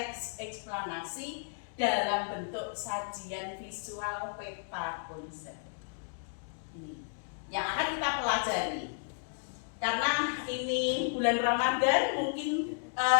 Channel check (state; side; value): silent; right; digital silence